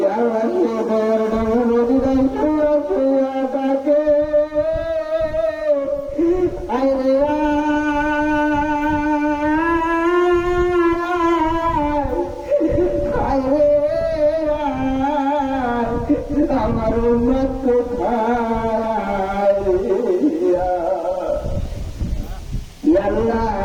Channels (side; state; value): both; identical; correlation 1.00